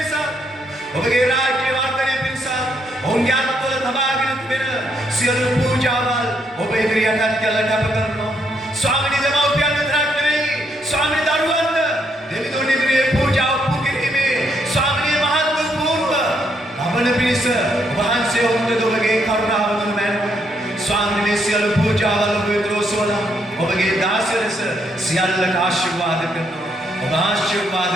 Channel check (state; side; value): normal; both; correlation 0.75